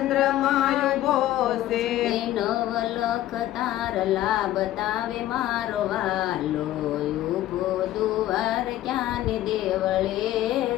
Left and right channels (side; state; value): right; quieter; 13.9 dB